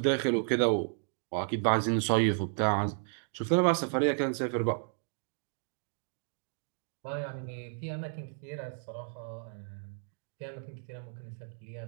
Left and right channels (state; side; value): silent; left; digital silence